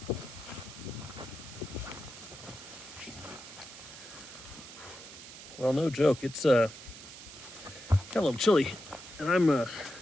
Well, no joke. It's got a little chilly, and I'm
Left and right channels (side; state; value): right; noise; hiss, 15 dB below the sound